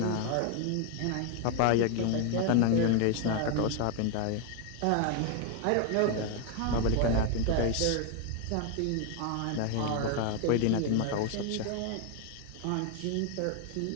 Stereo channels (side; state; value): both; different; correlation 0.01